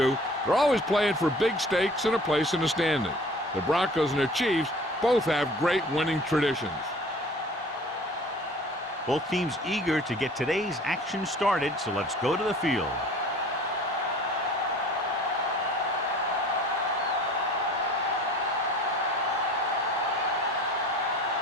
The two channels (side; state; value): both; normal; correlation 0.46